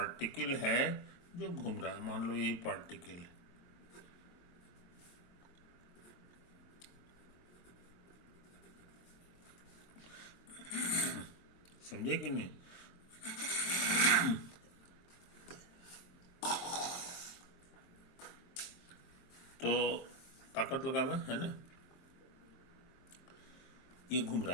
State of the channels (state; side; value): late; right; 23 ms